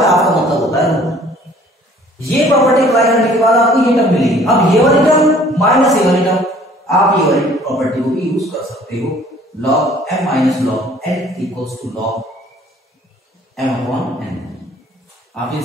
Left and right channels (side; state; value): both; normal; correlation 0.55